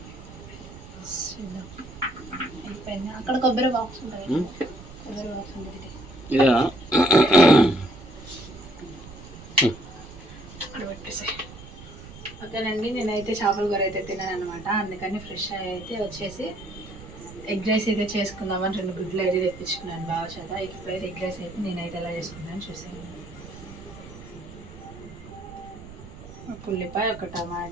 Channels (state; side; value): noise; right; rumble, 16 dB below the sound